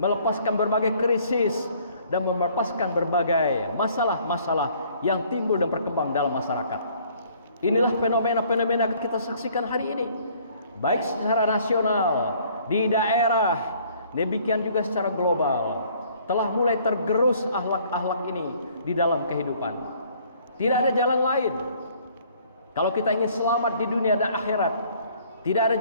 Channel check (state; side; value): inverted; both; correlation -0.59